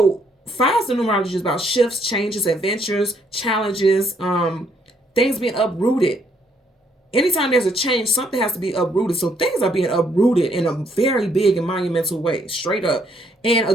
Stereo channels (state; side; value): normal; both; correlation 0.70